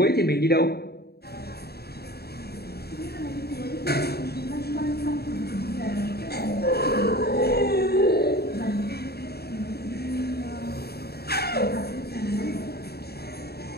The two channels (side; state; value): right; late; 0.46 ms